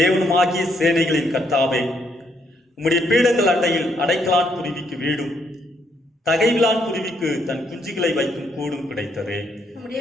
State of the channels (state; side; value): normal; both; correlation 0.73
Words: சேனைகளின் கர்த்தாவே, உம்முடைய பீடங்கள் அண்டையில் அடைக்கலான் குருவிக்கு வீடும் தகைவிலான் குருவிக்கு தன் குஞ்சுகளை வைக்கும் கூடும் கிடைத்ததே.